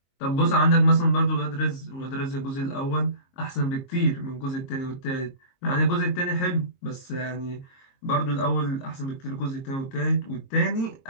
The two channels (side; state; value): right; late; 22 ms